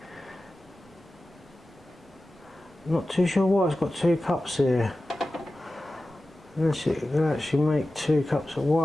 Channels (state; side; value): normal; both; correlation 0.95